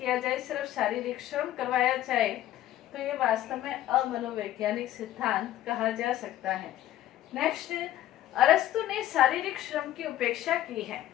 जाए, सिर्फ शारीरिक श्रम करवाया जाए, तो ये वास्तव में अमनोवैज्ञानिक सिद्धांत कहा जा सकता है। नेक्स्ट, अरस्तु ने शारीरिक श्रम की उपेक्षा की है।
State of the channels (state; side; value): quieter; right; 13.4 dB